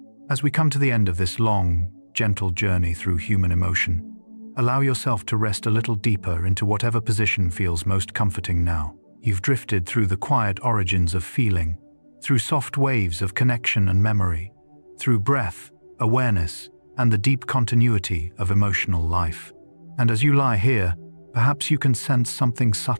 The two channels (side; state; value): both; inverted; correlation -1.00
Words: As we come to the end of this long, gentle journey through human emotion, allow yourself to rest a little deeper into whatever position feels most comforting now. You've drifted through the quiet origins of feeling, through soft waves of connection and memory, through breath, awareness, and the deep continuity of emotional life. And as you lie here, perhaps you can sense something